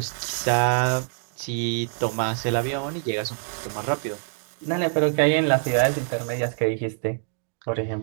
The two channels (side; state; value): left; silent; digital silence